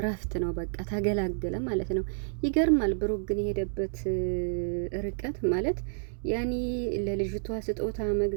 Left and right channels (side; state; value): left; silent; digital silence